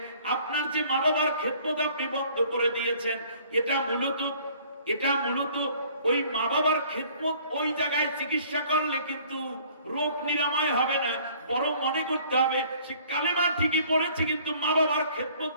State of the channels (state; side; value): inverted; both; correlation -0.55